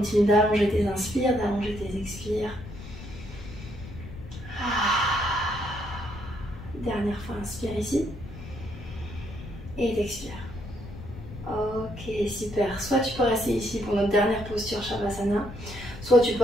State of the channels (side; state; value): left; noise; rumble, 13 dB below the sound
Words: d'allonger tes inspires, d'allonger tes expires. Dernière fois, inspire ici. Et t'expires. Ok, super. Soit tu peux rester ici pour notre dernière posture Shavasana. Soit tu peux